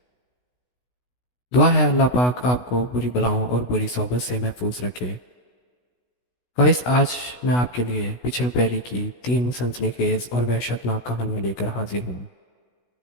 दुआ है अल्लाह पाक आपको बुरी बलाओं और बुरी सोबत से महफूज रखे। गाइस, आज मैं आपके लिए पिछल पैरी की 3 सनसनीखेज और वहशतनाक कहानियाँ लेकर हाजिर हूँ।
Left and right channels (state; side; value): late; right; 16 ms